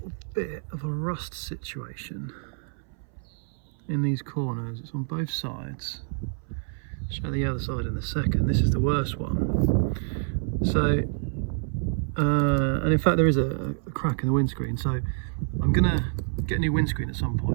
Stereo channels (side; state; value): left; silent; 60 dB below the other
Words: bit of a rust situation in these corners. It's on both sides. I'll show the other side in a second. This is the worst one. So, and in fact there is a crack in the windscreen, so I'm gonna get a new windscreen at some